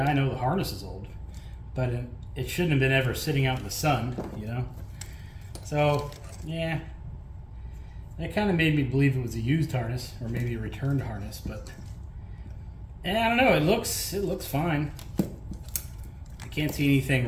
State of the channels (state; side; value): identical; both; correlation 1.00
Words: I know the harness is old, but it shouldn't have been ever sitting out in the sun. So yeah. That kind of made me believe it was a used harness, or maybe a returned harness, but I don't know. It looks fine. I can't see